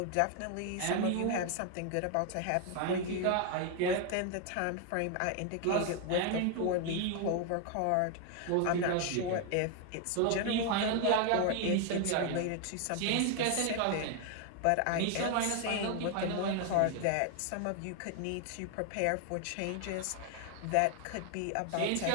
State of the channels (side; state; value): both; different; correlation 0.01